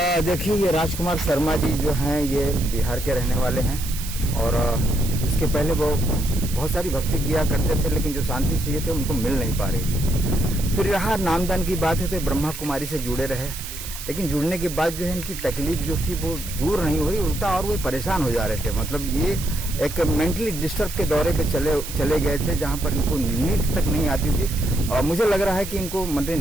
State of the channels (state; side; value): noise; right; hiss, 10 dB below the sound